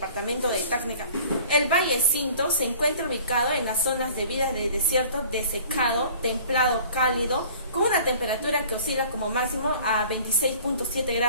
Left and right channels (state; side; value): inverted; both; correlation -0.48